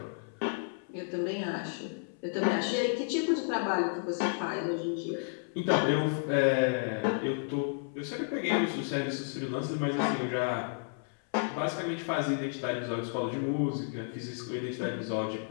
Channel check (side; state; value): right; silent; 56 dB below the other